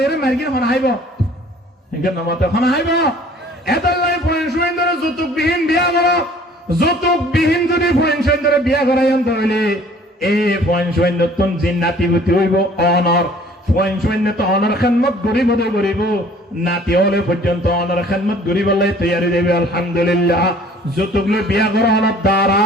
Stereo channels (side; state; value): both; normal; correlation 0.53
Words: মার্কিন হন আইব একে নমতে হন আইব এতলাই পয়েন্ট সুন্দর যৌতুক বিহীন বিয়া করো যৌতুক বিহীন যদি পয়েন্ট সুন্দর বিয়া করাই আনতে হইলে এই পয়েন্ট সুন্দর তুন জিন্নাতি বুতি হইব অনর পয়েন্ট সুন্দর তো অনর খেদমত গরিব হতে গরিব নাতি হলে পর্যন্ত অনর খেদমত গরিব হলে তৈরি দেবে আলহামদুলিল্লাহ যৌতুক লই বিয়া করো অনর দ্বারা